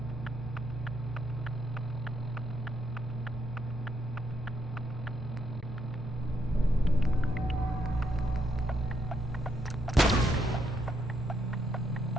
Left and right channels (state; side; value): normal; both; correlation 0.77